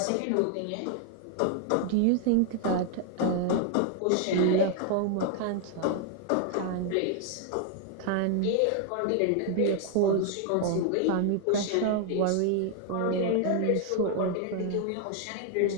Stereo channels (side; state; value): both; different; correlation 0.00